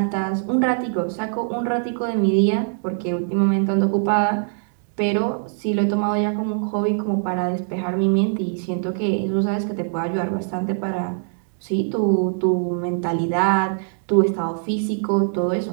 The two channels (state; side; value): silent; left; digital silence